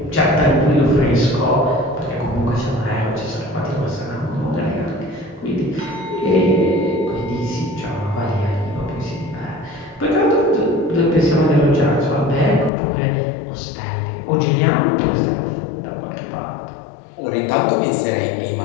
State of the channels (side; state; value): right; drops out; at 12.7 s